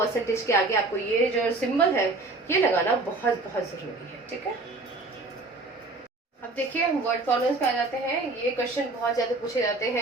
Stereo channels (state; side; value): quieter; left; 3.2 dB